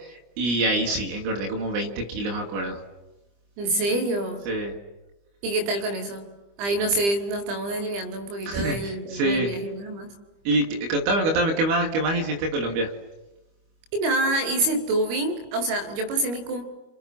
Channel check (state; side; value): late; left; 25 ms